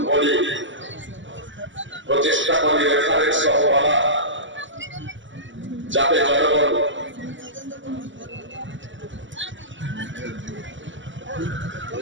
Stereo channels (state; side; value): late; left; 0.55 ms